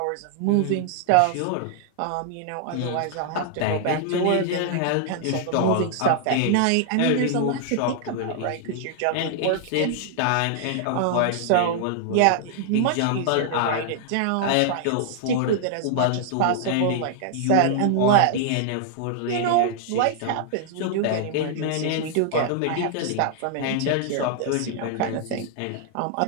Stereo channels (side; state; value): both; different; correlation -0.01